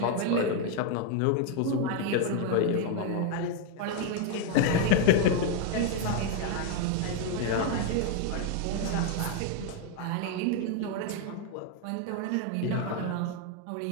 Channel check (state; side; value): different; both; correlation 0.01